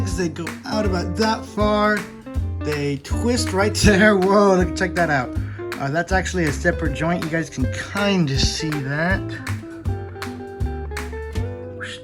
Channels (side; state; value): both; identical; correlation 1.00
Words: they go out about that far. They twist right there. Whoa, check that out. That's actually a separate joint. You guys can kind of see that.